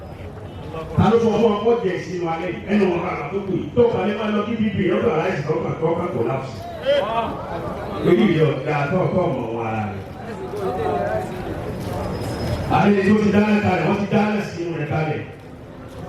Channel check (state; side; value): identical; both; correlation 1.00